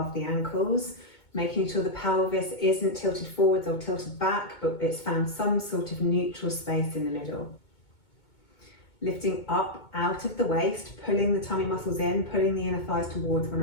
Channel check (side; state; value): right; late; 2.2 ms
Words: the ankles, making sure the pelvis isn't tilted forwards or tilted back, but it's found some sort of neutral space in the middle. Lifting up out of the waist, pulling the tummy muscles in, pulling the inner thighs towards one